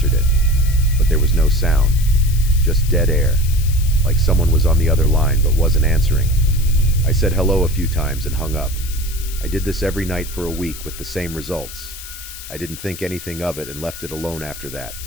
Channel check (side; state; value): left; noise; hiss, 13 dB below the sound